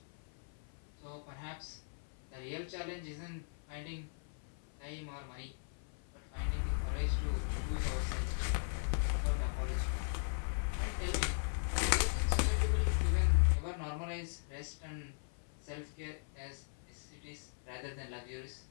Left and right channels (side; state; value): right; silent; 52 dB below the other